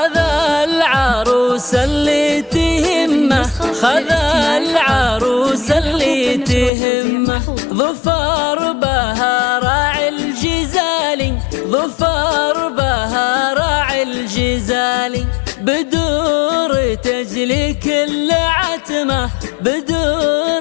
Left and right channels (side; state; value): right; drops out; at 6.7 s